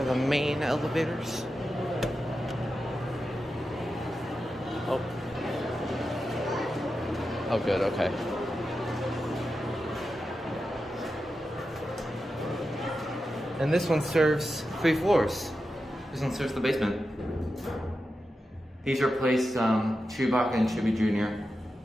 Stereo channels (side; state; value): both; normal; correlation 0.90